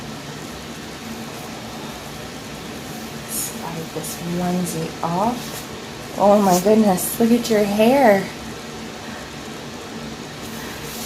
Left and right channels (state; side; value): identical; both; correlation 1.00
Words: Slide this onesie off. Oh my goodness, look at your hair.